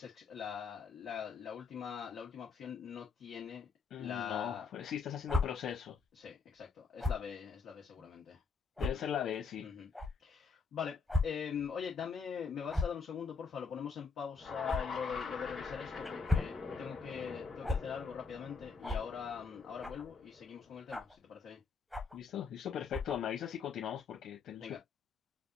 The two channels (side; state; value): right; quieter; 4.9 dB